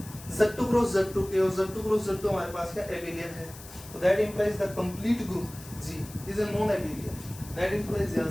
Z2 क्रॉस Z2 के, और Z2 क्रॉस Z2 हमारे पास क्या एबिलियन है, तो that implies the complete group G is a non एबिलियन, that implies यहां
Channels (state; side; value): noise; left; hiss, 17 dB below the sound